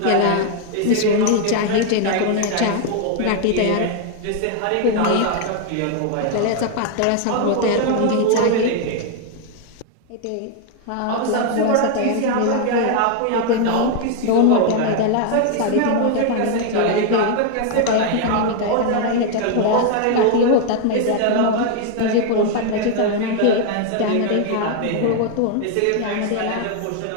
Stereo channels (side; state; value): both; different; correlation 0.00